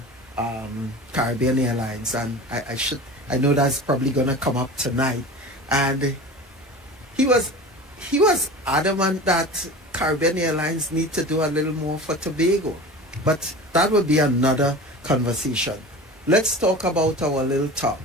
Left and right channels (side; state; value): both; normal; correlation 0.34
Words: Caribbean Airlines, and I know that's probably gonna come up tonight. And he was adamant that Caribbean Airlines need to do a little more for Tobago. But that would be another conversation. Let's talk about our little